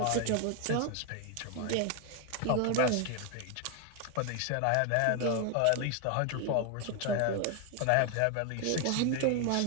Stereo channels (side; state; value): both; different; correlation 0.01